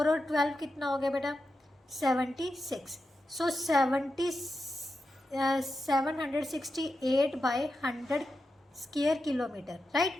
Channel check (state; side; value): normal; both; correlation 0.89